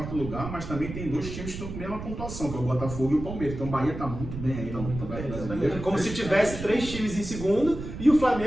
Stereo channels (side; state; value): right; noise; rumble, 8 dB below the sound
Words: lugar, mas também tem 2 times que estão com a mesma pontuação, que é o Botafogo e o Palmeiras. Então o Bahia está muito bem aí no Campeonato Brasileiro. Como se tivesse 3 times em segundo e o